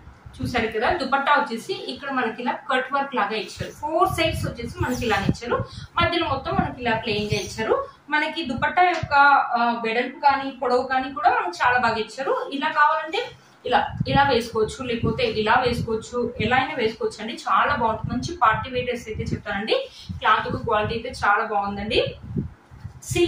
చూసారు కదా, దుపట్టా వచ్చేసి ఇక్కడ మనకి ఇలా కట్ వర్క్ లాగా ఇచ్చారు. 4 సైడ్స్ వచ్చేసి మనకి ఇలా ఇచ్చారు. మధ్యలో మొత్తం మనకి ఇలా ప్లెయిన్ గా ఇచ్చారు. మనకి దుపట్టా యొక్క వెడల్పు కానీ పొడవు కానీ కూడా మనకి చాలా బాగా ఇచ్చారు. ఇలా కావాలంటే ఇలా వేసుకోవచ్చు, లేకపోతే ఇలా వేసుకోవచ్చు, ఎలా అయినా వేసుకోవచ్చు అండి. చాలా బాగుంటుంది. మంచి పార్టీ వేర్ డ్రెస్ అయితే చెప్తానండి. క్లాత్ క్వాలిటీ అయితే చాలా బాగుందండి.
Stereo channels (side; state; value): both; identical; correlation 1.00